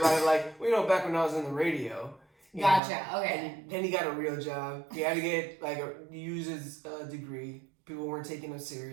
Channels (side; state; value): left; drops out; at 2.8 s